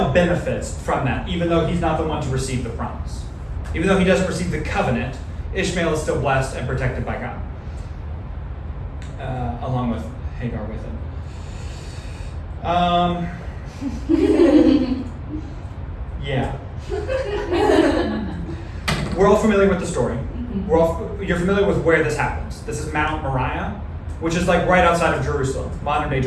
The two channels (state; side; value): identical; both; correlation 1.00